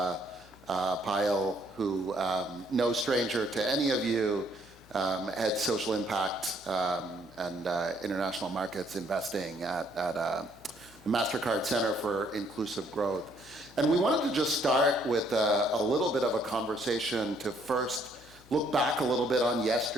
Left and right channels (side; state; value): left; noise; hum, 25 dB below the sound